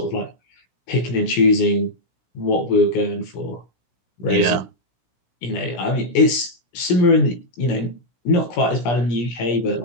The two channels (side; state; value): right; late; 17 ms